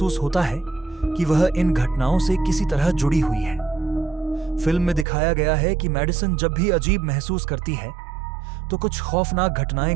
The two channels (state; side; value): drops out; left; at 5.1 s